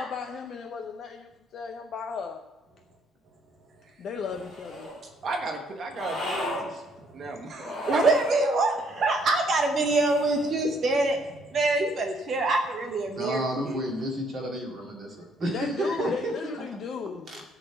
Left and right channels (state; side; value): normal; both; correlation 0.66